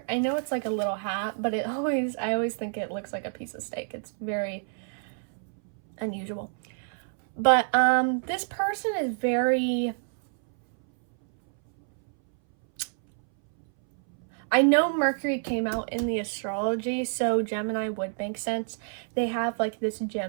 I know it's like a little hat, but I always think it looks like a piece of steak. It's very unusual. But, this person is very... I know Mercury came out in the astrology, so Gemini would make sense. They have like this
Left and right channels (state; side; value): silent; left; 60 dB below the other